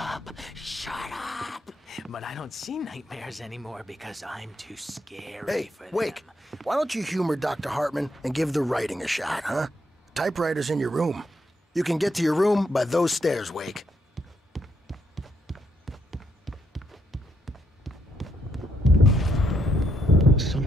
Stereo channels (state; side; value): normal; both; correlation 0.76